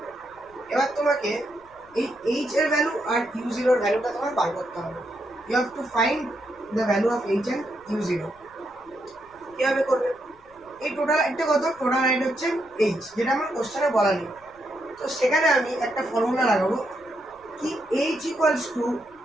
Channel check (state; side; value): noise; left; rumble, 30 dB below the sound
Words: এবার তোমাকে এই এইচ এর ভ্যালু আর u0 এর ভ্যালুটা তোমার বার করতে হবে। You have to find the value of H and u0। কিভাবে করবে, এই টোটাল একটা কত, টোটাল হাইট হচ্ছে এইচ, যেটা আমার কোশ্চেনে বলা নেই। তো সেখানে আমি একটা ফর্মুলা লাগাবো কি, H equals to